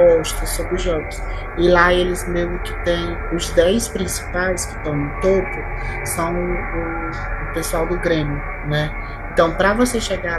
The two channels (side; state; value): both; identical; correlation 1.00